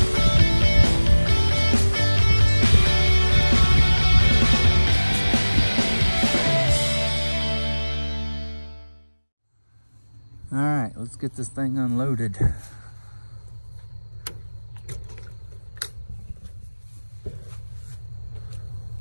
All right, let's get this thing unloaded.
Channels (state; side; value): inverted; both; correlation -1.00